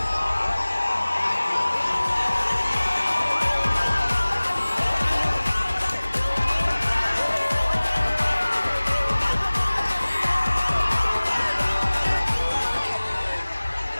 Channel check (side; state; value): both; inverted; correlation -1.00